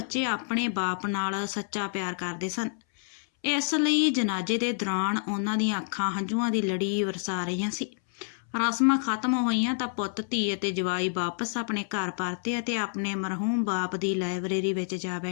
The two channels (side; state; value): right; silent; 59 dB below the other